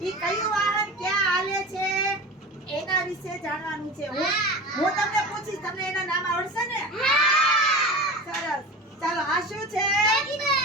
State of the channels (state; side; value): normal; both; correlation 0.31